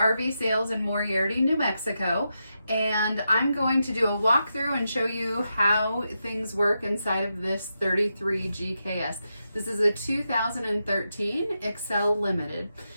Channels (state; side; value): inverted; both; correlation -0.86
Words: Sales in Moriarty, New Mexico, and I'm going to do a walkthrough and show you how things work inside of this 33 GKS. This is a 2013 Excel Limited.